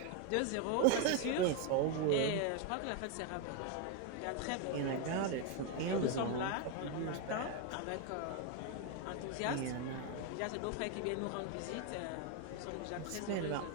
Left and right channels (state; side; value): different; both; correlation 0.01